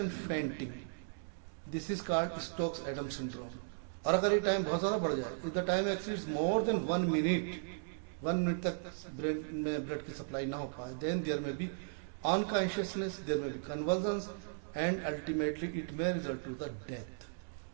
fainting, this is called Stokes Adam syndrome. और अगर ये टाइम बहुत ज्यादा बढ़ जाए, if the time exceeds more than 1 minute तक ब्रेन में ब्लड की सप्लाई ना हो पाए, then there may be unconsciousness, there may be convulsions, and ultimately it may result to the death.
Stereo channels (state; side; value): silent; left; digital silence